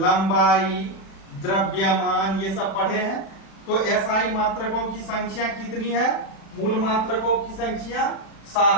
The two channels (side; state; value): right; late; 36 ms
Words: द्रव्यमान, ये सब पढ़े हैं। तो एसआई मात्रकों की संख्या कितनी है, मूल मात्रकों की संख्या